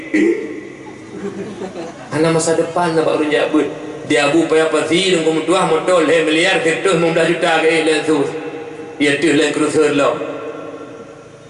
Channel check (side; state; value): both; identical; correlation 1.00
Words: ana masa depan nak baru jabut. Dia abu payah pasti nunggu mutuah motor le miliar ketuh 15 juta ke lensus. Ia tu len cruiser lo.